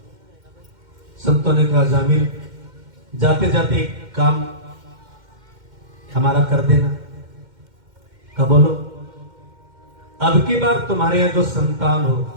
संतों ने कहा, जामिल जाते जाते एक काम हमारा कर देना। कहा, बोलो। अब की बार तुम्हारे यहां जो संतान हो,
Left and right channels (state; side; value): late; left; 2.1 ms